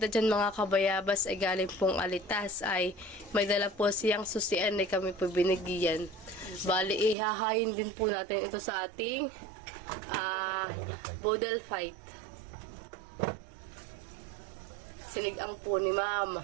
dyan mga kabayabas ay galing pong Alitas ay may dala po siyang susian ay kami po binigyan. Bali ihahayin din po natin ito sa ating bodel fight. Sinigang po ni Mama.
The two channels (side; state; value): left; drops out; at 7.2 s